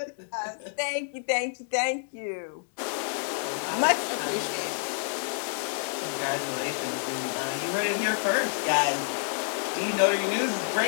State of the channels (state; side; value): silent; right; digital silence